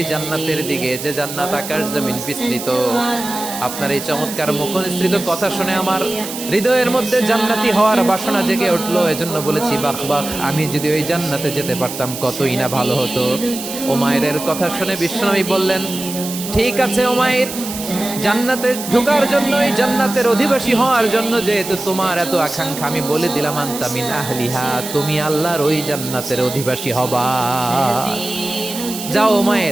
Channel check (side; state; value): right; noise; hiss, 9 dB below the sound